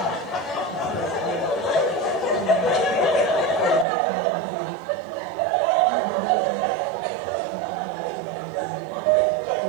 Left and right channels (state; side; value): drops out; left; at 3.9 s